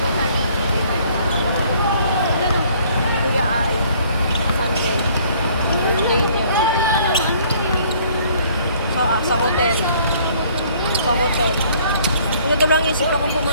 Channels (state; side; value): inverted; both; correlation -0.59